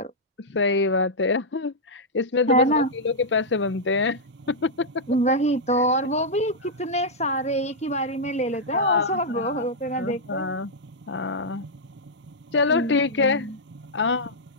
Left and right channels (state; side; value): normal; both; correlation -0.07